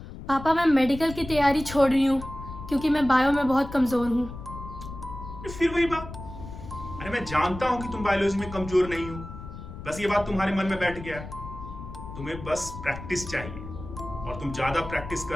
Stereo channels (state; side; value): noise; left; rumble, 12 dB below the sound